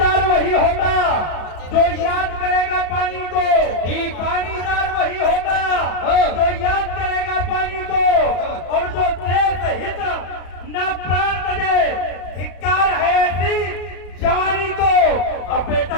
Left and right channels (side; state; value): right; late; 33 ms